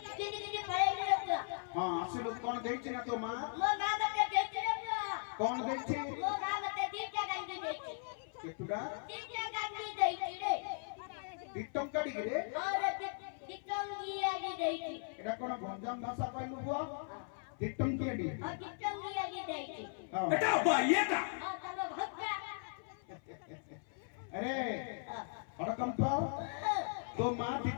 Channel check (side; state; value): right; silent; 52 dB below the other